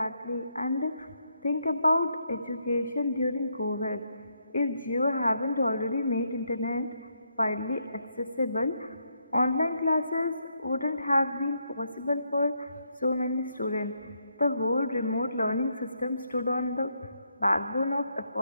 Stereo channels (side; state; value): both; inverted; correlation -0.77